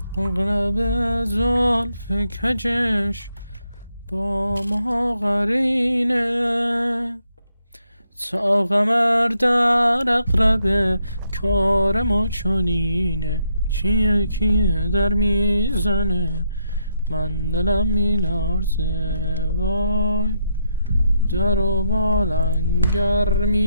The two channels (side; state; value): both; inverted; correlation -0.79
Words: اغرب زلف کجش با ما قرینه. تا قمر در اقرب کار ما چنینه، کیه در میزنه من دلم میلرزه، وای در و بالنگر